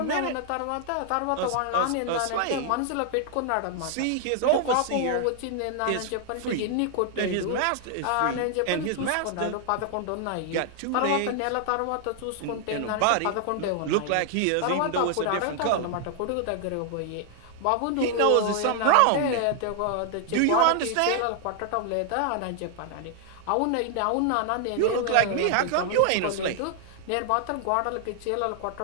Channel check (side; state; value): both; different; correlation 0.00